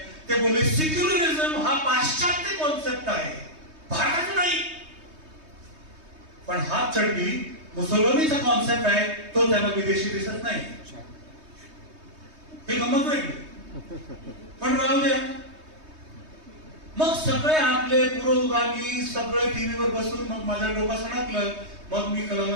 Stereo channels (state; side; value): late; left; 3.2 ms